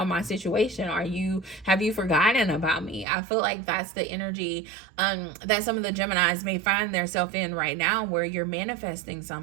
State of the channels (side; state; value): left; drops out; at 3.1 s